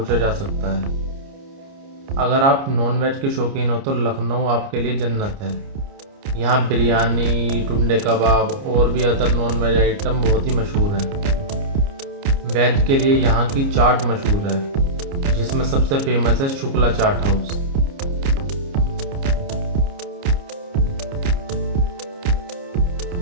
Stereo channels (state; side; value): late; left; 29 ms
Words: जा सकता है। अगर आप नॉनवेज के शौकीन हो तो लखनऊ आपके लिए जन्नत है। यहाँ बिरयानी, टुंडे कबाब और भी अदर नॉनवेज आइटम बहुत ही मशहूर हैं। वेज के लिए यहाँ की चाट मशहूर है, जिसमें सबसे फेमस है शुक्ला चाट हाउस।